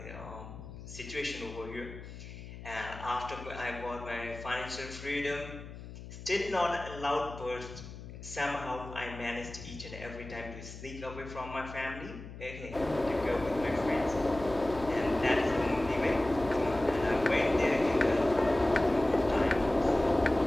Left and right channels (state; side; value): noise; left; hum, 13 dB below the sound